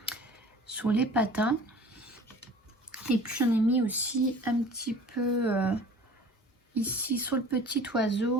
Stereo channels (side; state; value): both; normal; correlation 0.45